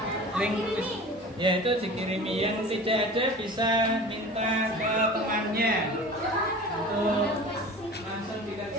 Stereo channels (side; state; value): both; normal; correlation 0.38